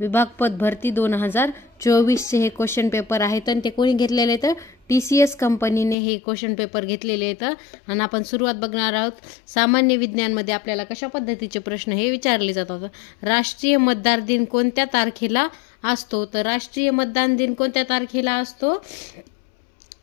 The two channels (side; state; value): right; drops out; at 6.0 s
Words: पदभरती 2024 चे हे क्वेश्चन पेपर आहेत आणि ते कोणी घेतलेले आहेत? TCS कंपनीने हे क्वेश्चन पेपर घेतलेले आहेत. आणि आपण सुरुवात बघणार आहोत. सामान्य विज्ञानमध्ये आपल्याला कशा पद्धतीचे प्रश्न हे विचारले जातात. राष्ट्रीय मतदार दिन कोणत्या तारखेला असतो? तर राष्ट्रीय मतदान दिन कोणत्या तारखेला असतो?